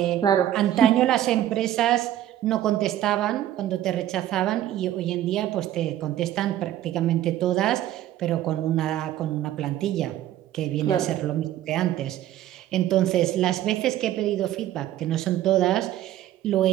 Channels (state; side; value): quieter; left; 12.6 dB